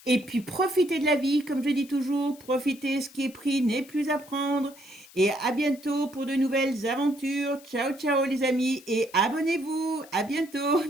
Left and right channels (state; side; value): noise; left; hiss, 22 dB below the sound